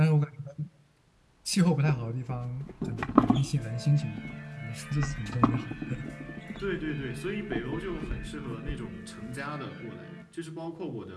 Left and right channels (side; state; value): both; identical; correlation 1.00